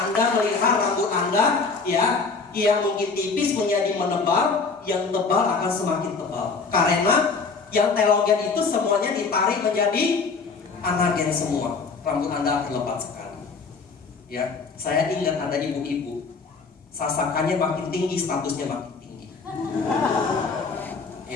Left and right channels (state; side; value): quieter; right; 4.6 dB